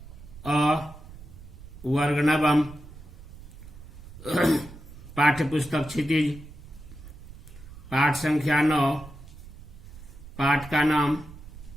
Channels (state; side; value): noise; right; rumble, 16 dB below the sound